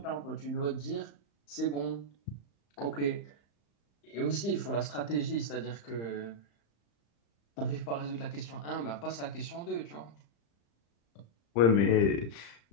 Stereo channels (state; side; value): late; right; 35 ms